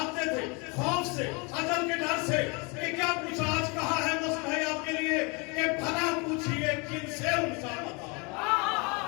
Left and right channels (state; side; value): quieter; right; 30.0 dB